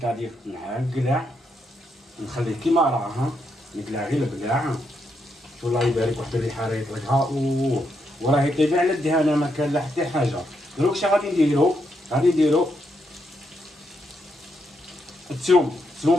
نقلع نخليه كيما راه نقلع غير البقلاع. والله يبارك واحد الريحه راه يطلقها وراه يطيب على الدهانه ما كان لا حتى حاجه. دروك اش غادي نديرو؟ غادي نديرو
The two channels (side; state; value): both; normal; correlation 0.80